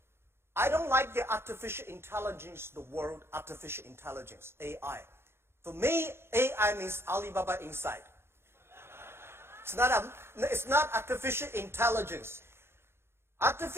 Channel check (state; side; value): late; left; 0.12 ms